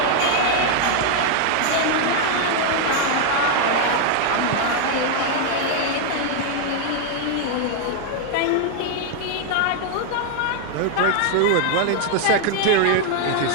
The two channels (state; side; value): different; both; correlation 0.00